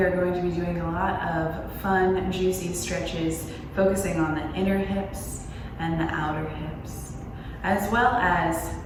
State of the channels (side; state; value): both; identical; correlation 1.00